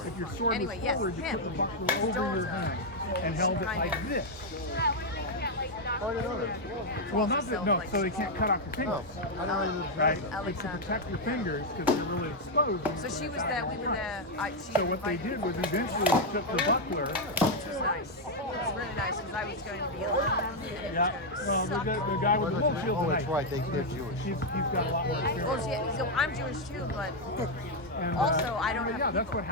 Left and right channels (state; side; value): normal; both; correlation 0.00